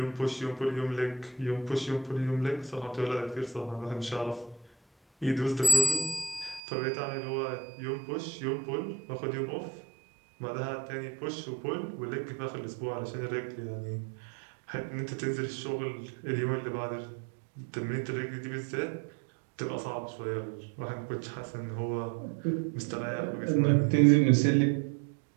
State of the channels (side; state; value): left; drops out; at 6.6 s